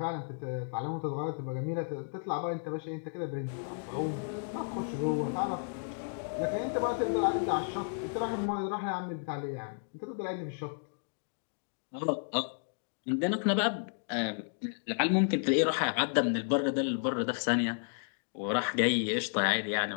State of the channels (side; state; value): right; silent; digital silence